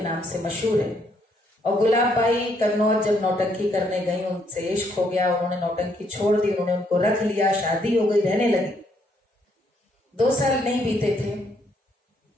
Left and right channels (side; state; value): both; normal; correlation 0.71